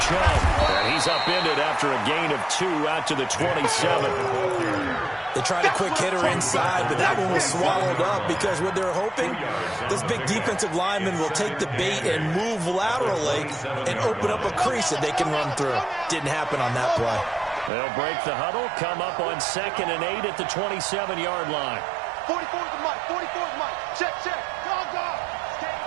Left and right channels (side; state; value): left; drops out; at 17.7 s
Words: Chubb. And he's upended after a gain of 2 out to the 27. They tried a quick hitter inside, but that one was swallowed up because what they're hoping, this big defensive lineman will take the bait and move laterally and open up a crease that they can run through. Didn't happen on that play. They'll break the huddle, come up on 2nd and 8 at the 27-yard line. 44 is the Mike. 44 is the Mike. Check. Dog.